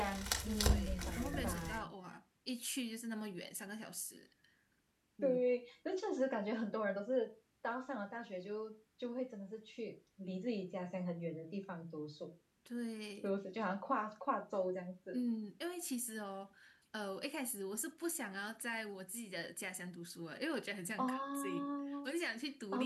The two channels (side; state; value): both; identical; correlation 1.00